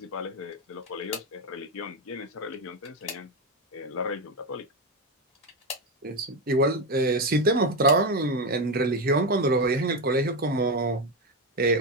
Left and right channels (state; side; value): normal; both; correlation 0.12